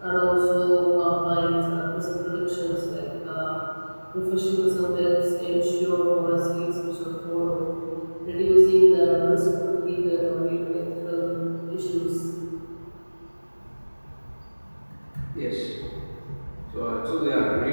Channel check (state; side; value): inverted; both; correlation -1.00